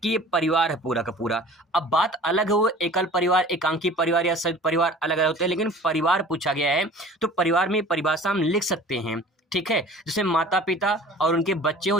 ये परिवार है पूरा का पूरा। अब बात अलग है, वो एकल परिवार, एकांकी परिवार या संयुक्त परिवार अलग अलग होते हैं, लेकिन परिवार पूछा गया है तो परिवार में परिभाषा हम लिख सकते हैं। ठीक है, जैसे माता पिता और उनके बच्चे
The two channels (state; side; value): normal; both; correlation 0.44